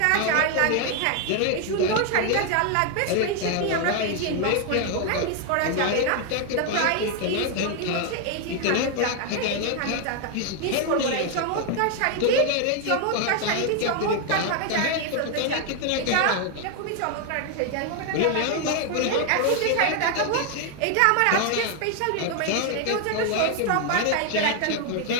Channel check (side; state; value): both; different; correlation 0.01